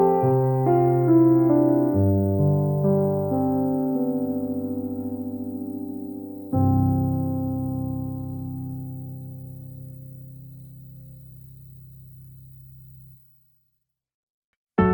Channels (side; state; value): both; identical; correlation 1.00